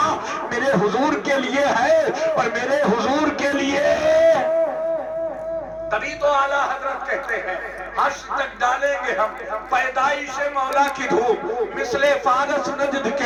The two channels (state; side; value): identical; both; correlation 1.00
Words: میرے حضور کے لیے ہے اور میرے حضور کے لیے. تبھی تو اعلیٰ حضرت کہتے ہیں حشر تک ڈالیں گے ہم پیدائش مولا کی دھوپ, مثل فارس نجد